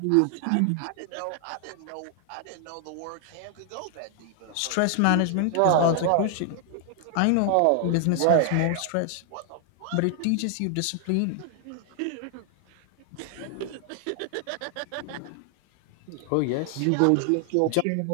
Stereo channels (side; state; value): both; different; correlation 0.00